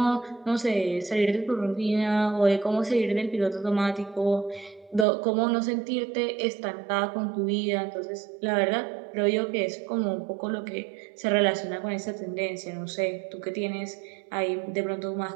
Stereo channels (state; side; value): drops out; left; at 5.1 s